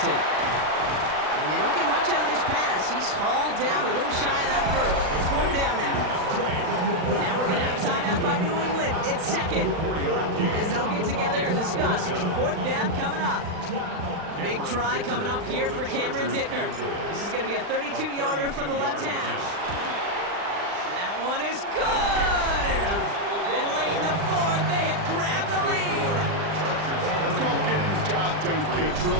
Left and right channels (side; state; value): left; late; 39 ms